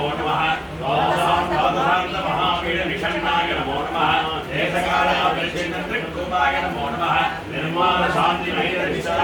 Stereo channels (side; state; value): both; identical; correlation 1.00